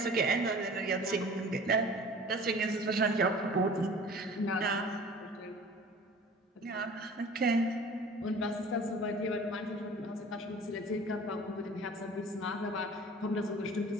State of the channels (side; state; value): both; normal; correlation 0.44